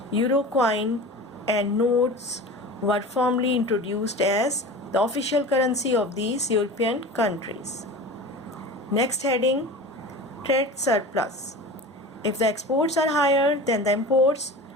Euro coin and notes were formally introduced as the official currency of these European countries. Next heading, trade surplus. If the exports are higher than the imports,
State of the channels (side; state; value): both; normal; correlation 0.34